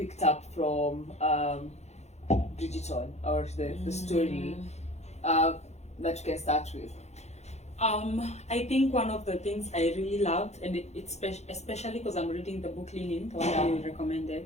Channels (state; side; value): late; right; 0.32 ms